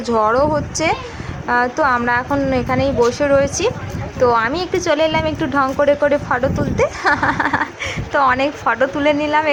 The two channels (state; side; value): identical; both; correlation 1.00